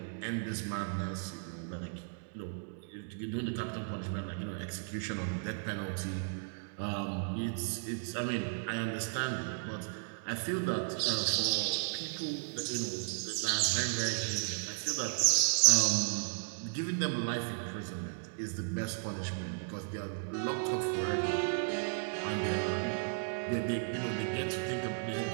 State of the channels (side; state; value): left; silent; digital silence